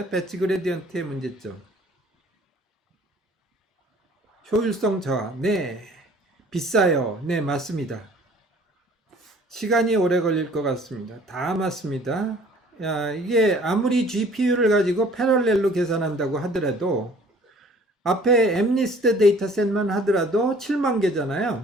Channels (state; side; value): normal; both; correlation 0.53